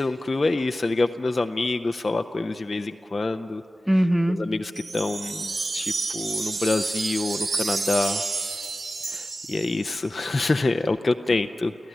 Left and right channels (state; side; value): normal; both; correlation 0.95